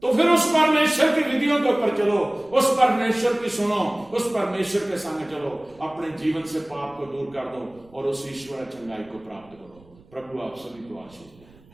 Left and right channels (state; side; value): noise; right; rumble, 27 dB below the sound